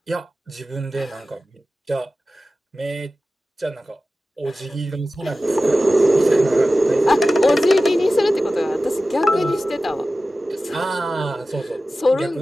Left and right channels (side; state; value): both; normal; correlation 0.95